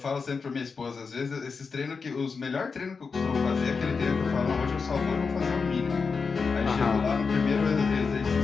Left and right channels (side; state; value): right; quieter; 5.0 dB